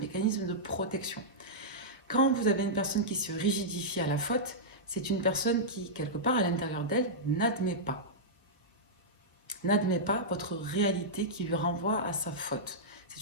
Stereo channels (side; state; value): both; normal; correlation -0.11